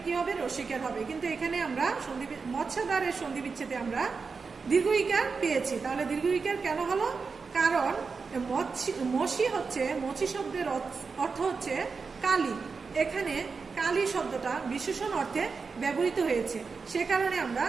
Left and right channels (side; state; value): left; quieter; 4.9 dB